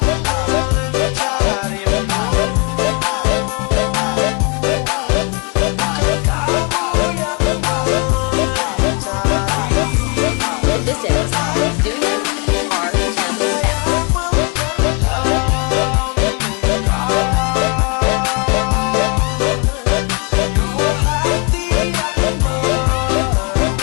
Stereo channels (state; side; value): quieter; right; 32.8 dB